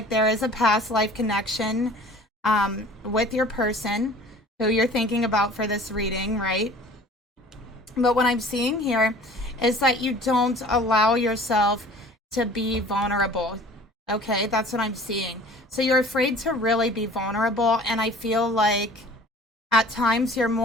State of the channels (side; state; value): both; normal; correlation 0.47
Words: there is a past life connection with your person who you're thinking about for this reading, right? But what I'm seeing here is that you don't allow yourself to be vulnerable. Okay, that's what I'm seeing. So you're afraid to really be vulnerable, and I feel like at times you're